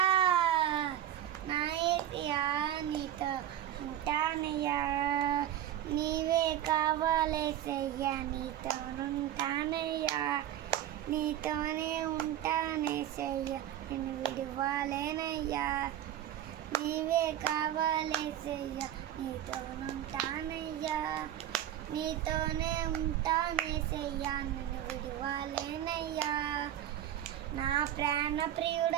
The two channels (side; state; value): left; quieter; 11.7 dB